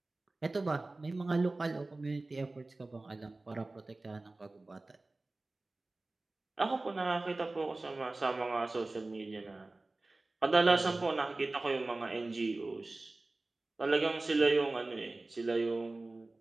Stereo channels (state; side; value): quieter; left; 3.1 dB